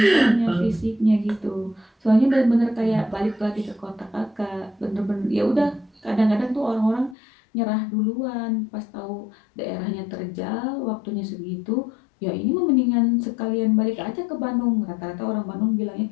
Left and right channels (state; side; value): drops out; right; at 7.2 s